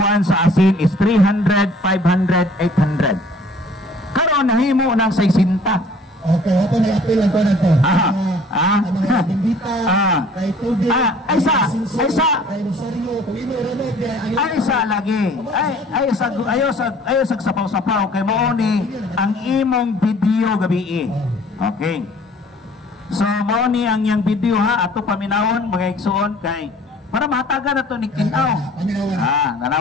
sa asin is 300, 500, 800. Karon nahimo ng 60. Okay, ako nag-appeal lang ko na to. Mga bimbita, kay tubig, ay sa kay Rosario, kung ino ronod, ay sa lagi. Ayo sa sapaw-sapaw kay mao ni ang imong video gabi. Okay. So mao ni ang iyang video ha ato paminawon mga igsuon kay para mahatagan na to ni tinaw.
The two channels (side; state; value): both; normal; correlation 0.52